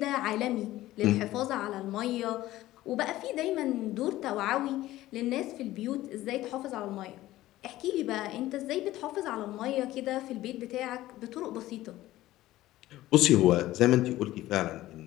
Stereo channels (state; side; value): quieter; right; 15.8 dB